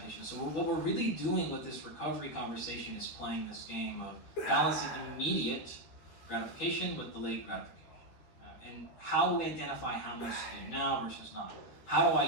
So what we're really doing with this recovery conversation is playing this game of balancing immediate gratification with delayed gratification. And how do we identify how much to do now versus not? How do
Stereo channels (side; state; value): right; late; 13 ms